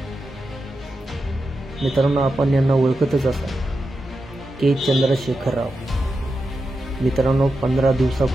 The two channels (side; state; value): both; normal; correlation 0.89